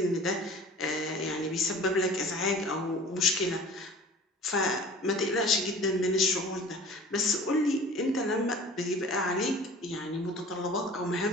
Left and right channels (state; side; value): normal; both; correlation 0.44